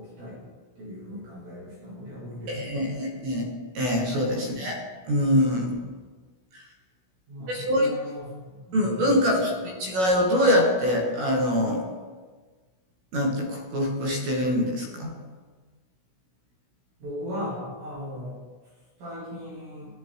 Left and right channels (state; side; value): late; left; 16 ms